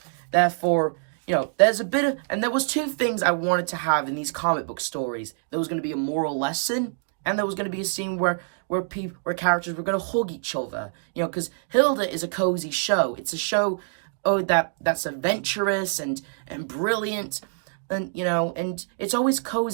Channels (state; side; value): silent; left; digital silence